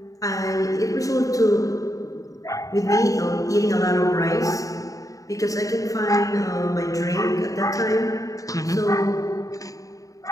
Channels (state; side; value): late; right; 0.16 ms